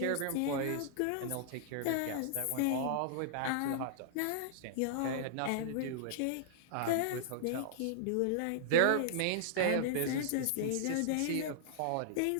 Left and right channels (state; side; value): different; both; correlation -0.01